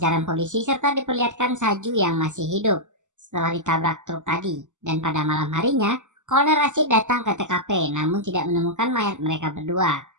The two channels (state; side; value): late; left; 0.85 ms